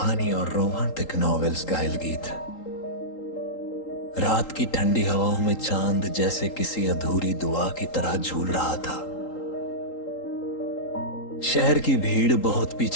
और रोमांटिक नॉवेल्स गाइल गीत। रात की ठंडी हवाओं में चांद जैसे किसी अधूरी दुआ की तरह झूल रहा था। शहर की भीड़ बहुत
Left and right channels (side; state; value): right; late; 3.8 ms